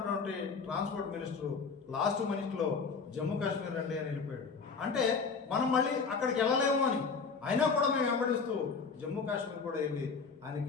ట్రాన్స్పోర్ట్ మినిస్టర్ లాస్ట్ మినిట్లో జమ్మూ కాశ్మీర్ రండి అని వెళ్ళిపోయాడు. అంటే మనం మళ్ళీ అక్కడికి వెళ్ళలేము అని అయినా కూడా మేము వెంబడిస్తూ జమ్మూ కాశ్మీర్ కూడా వెళ్ళి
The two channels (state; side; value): quieter; right; 5.1 dB